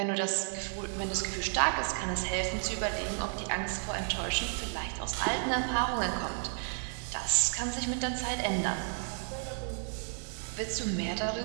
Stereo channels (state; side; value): silent; left; 56 dB below the other